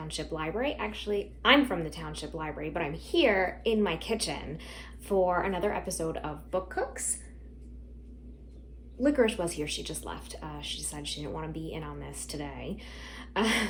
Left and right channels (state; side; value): identical; both; correlation 1.00